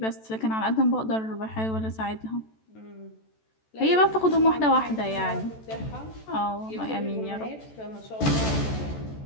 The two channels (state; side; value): late; right; 14 ms